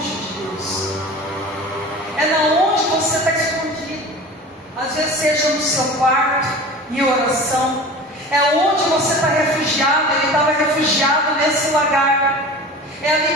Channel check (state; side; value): normal; both; correlation 0.37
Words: de Deus. É na onde você está escondido. Às vezes seja no seu quarto, em oração. É onde você está refugiado. Ele estava refugiado nesse lagar. É ali